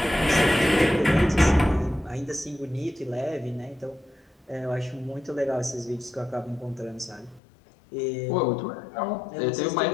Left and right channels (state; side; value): drops out; right; at 7.4 s